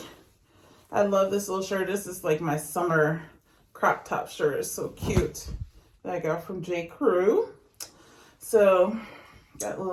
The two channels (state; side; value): identical; both; correlation 1.00